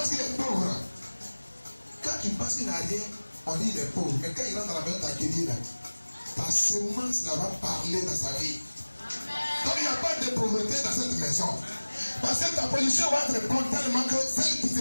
qu'il est pauvre. Quand tu penses qu'il n'a rien, on dit qu'il est pauvre. Mais quand il rentre dans la maison d'accueillir, ta semence là va parler dans sa vie. Donc il n'y a pas de pauvreté dans cette maison. Parce que ta position va être bonne tellement que celle qui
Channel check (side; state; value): both; inverted; correlation -1.00